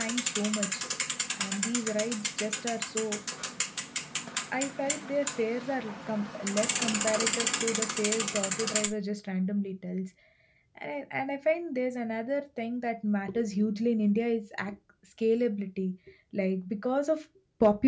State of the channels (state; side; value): identical; both; correlation 1.00